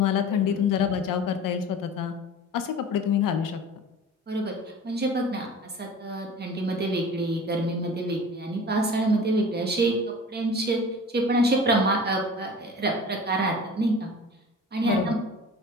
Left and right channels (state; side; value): normal; both; correlation 0.40